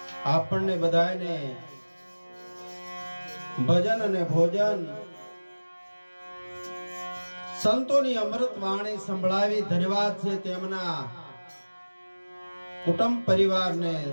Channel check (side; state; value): both; inverted; correlation -1.00